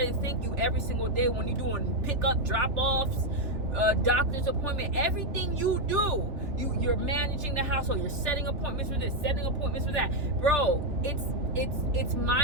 to thank you every single day when you're doing pickup, drop-offs, doctor's appointment, everything you do. You're managing the household. You're setting appointments for this, setting appointments for that. Bro, it's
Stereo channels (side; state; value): left; late; 3.4 ms